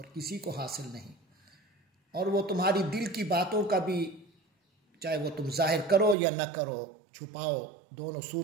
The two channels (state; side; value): drops out; left; at 6.2 s